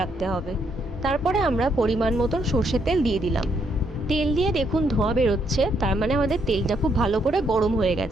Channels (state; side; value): normal; both; correlation 0.74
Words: রাখতে হবে। তারপরে আমরা পরিমাণ মতন সর্ষের তেল দিয়ে দিলাম। তেল দিয়ে দেখুন ধোঁয়া বেরোচ্ছে, তার মানে আমাদের তেলটা খুব ভালো করে গরম হয়ে